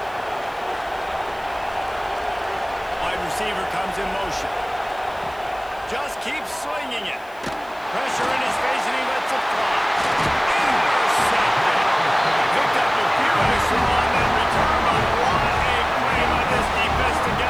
Wide receiver comes in motion. Just keeps swinging it. Pressure in his face, and he lets it fly. Intercepted. Picked up a few extra on that return, but what a play by this defense to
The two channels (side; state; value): left; noise; hiss, 27 dB below the sound